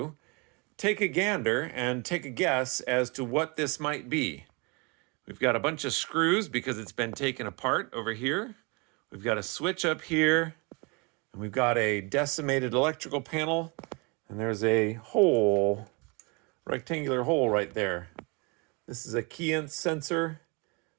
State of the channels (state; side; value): quieter; left; 29.9 dB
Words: take a gander and take a guess as to what this might be. We've got a bunch of screws because it's been taken apart over here. We've got a switch up here, and we've got a decimated electrical panel, and there's a hole, rectangular hole right there. This is a key sensor,